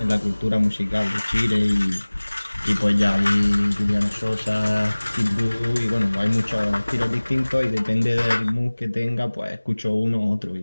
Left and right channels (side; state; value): both; inverted; correlation -1.00